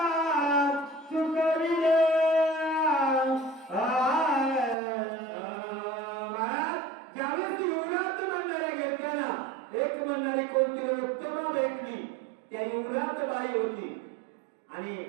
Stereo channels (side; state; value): left; drops out; at 4.8 s